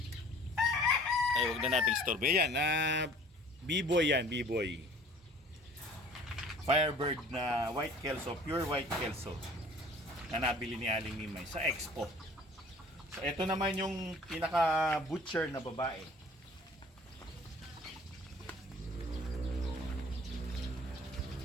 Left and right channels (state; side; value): normal; both; correlation 0.49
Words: Ay, wag na nating istorbo. Yan, B-boy yan, B-boy. Firebird na white kelso, pure white kelso na nabili ni Aling Mimay sa Expo. So ito naman yung pinaka butcher na babae.